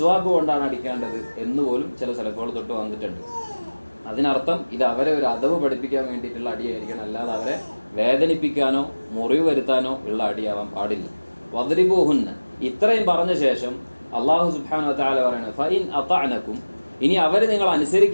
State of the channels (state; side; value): inverted; both; correlation -1.00